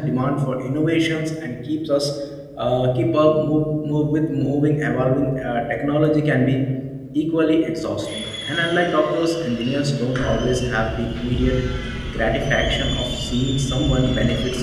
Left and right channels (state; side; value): identical; both; correlation 1.00